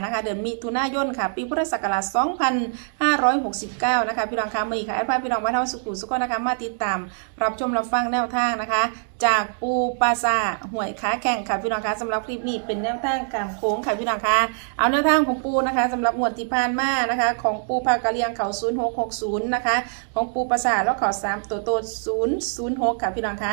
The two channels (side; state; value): left; silent; digital silence